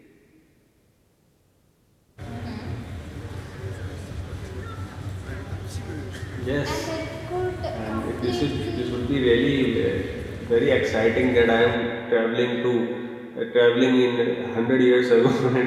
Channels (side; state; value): both; identical; correlation 1.00